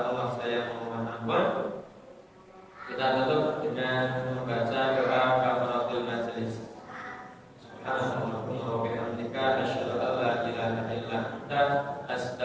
Allah saya mohon ampun. Kita tutup dengan membaca doa kafaratul majelis. Subhanallahumma wa bihamdika asyhadu an la ilaha illa anta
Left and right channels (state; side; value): identical; both; correlation 1.00